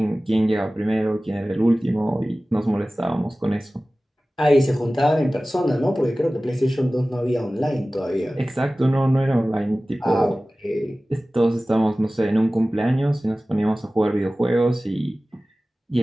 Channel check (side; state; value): both; normal; correlation 0.97